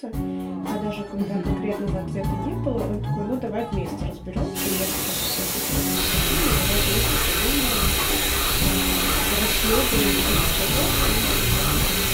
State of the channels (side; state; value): both; identical; correlation 1.00